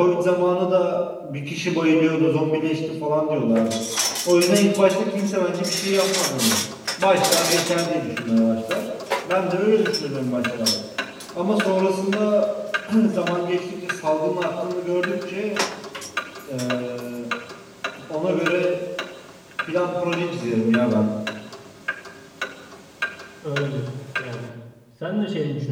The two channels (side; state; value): both; identical; correlation 1.00